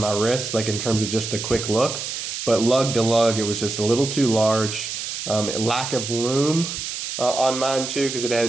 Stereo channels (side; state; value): right; noise; hiss, 5 dB below the sound